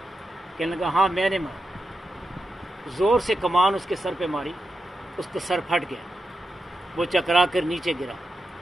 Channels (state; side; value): normal; both; correlation 0.88